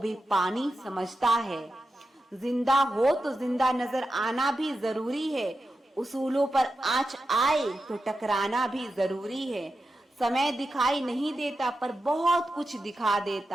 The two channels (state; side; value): normal; both; correlation 0.90